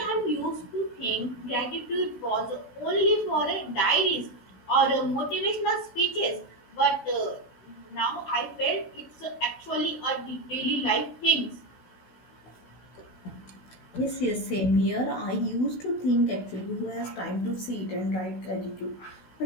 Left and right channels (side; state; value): right; late; 16 ms